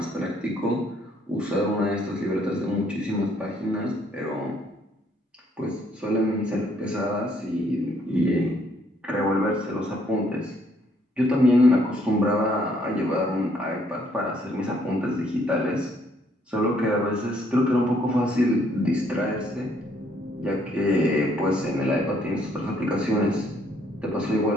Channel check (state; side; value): normal; both; correlation 0.67